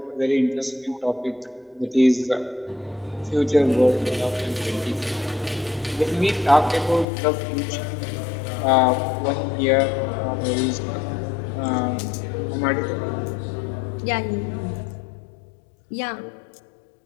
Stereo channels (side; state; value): right; drops out; at 7.1 s